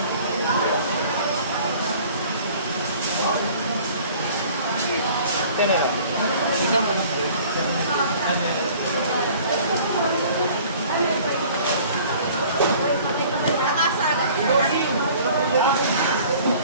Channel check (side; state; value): both; inverted; correlation -0.50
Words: Ito na yan. Ikaw mo.